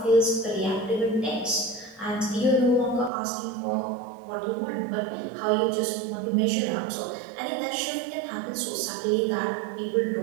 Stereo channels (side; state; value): left; drops out; at 3.1 s